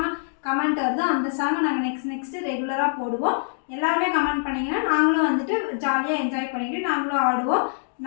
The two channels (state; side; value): silent; right; digital silence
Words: கமெண்ட் வருதோ அந்த சாங்கை நாங்கள் நெக்ஸ்ட்டு ரெகுலராக போடுவோம். எல்லாருமே கமெண்ட் பண்ணிங்கன்னா நாங்களும் வந்துட்டு ஜாலியாக என்ஜாய் பண்ணிக்கிட்டு நாங்களும் ஆடுவோம்.